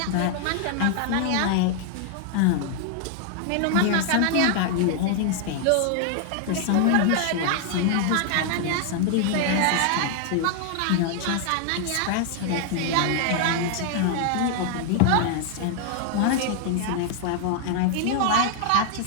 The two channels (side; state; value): both; different; correlation 0.00